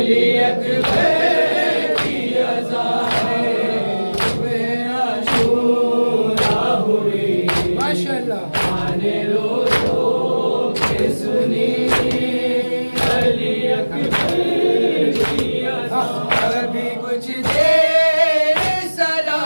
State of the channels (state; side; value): inverted; both; correlation -1.00